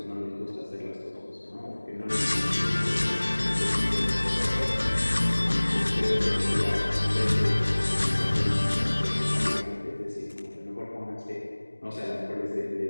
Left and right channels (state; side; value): inverted; both; correlation -1.00